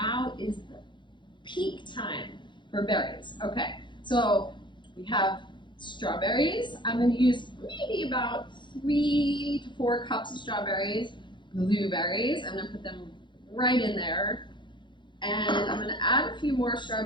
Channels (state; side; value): late; right; 0.23 ms